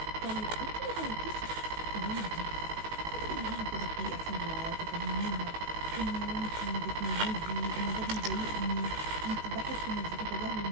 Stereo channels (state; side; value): late; left; 19 ms